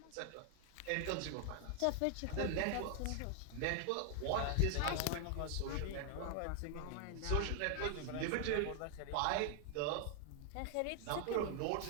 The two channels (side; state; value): both; different; correlation 0.00